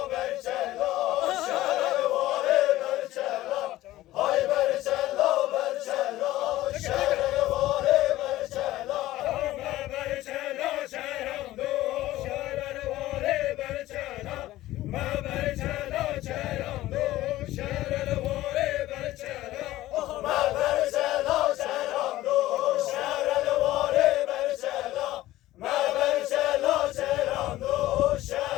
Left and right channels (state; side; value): quieter; right; 15.9 dB